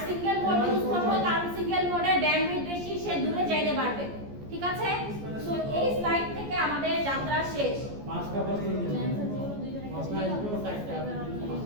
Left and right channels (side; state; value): left; late; 14 ms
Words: সিঙ্গেল মোড ইউজ করব কারণ সিঙ্গেল মোডের ব্যান্ডউইথ বেশি সে দূরে যাইতে পারবে ঠিক আছে সো এই স্লাইড থেকে আমাদের যাত্রা শেষ পাঁচটা প্রশ্ন দিলেন প্রশ্ন আসবে সাইডটা